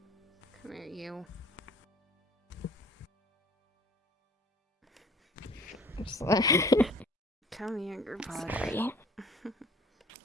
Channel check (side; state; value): both; normal; correlation 0.50